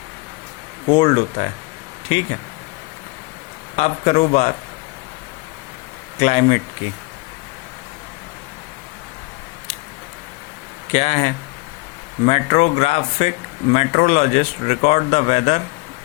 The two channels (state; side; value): quieter; right; 25.3 dB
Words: कोल्ड होता है। ठीक है, अब करो बात क्लाइमेट की। क्या है? meteorologists record the weather